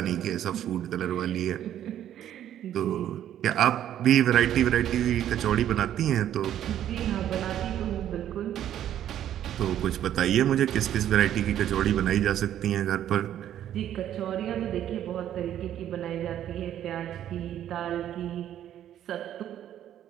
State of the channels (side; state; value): left; quieter; 11.1 dB